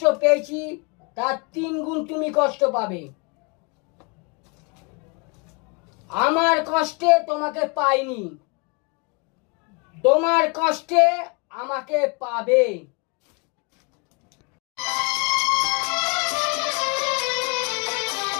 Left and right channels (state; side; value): quieter; right; 32.4 dB